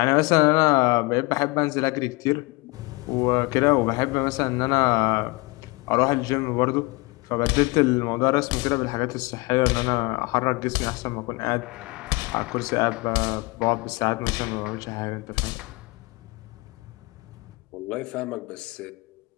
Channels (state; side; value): quieter; right; 24.8 dB